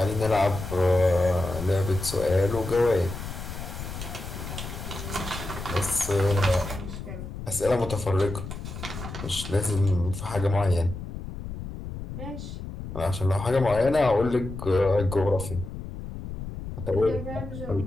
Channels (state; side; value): noise; left; rumble, 9 dB below the sound